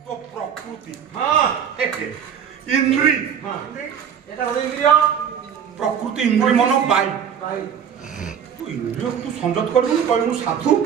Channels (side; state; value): left; quieter; 8.1 dB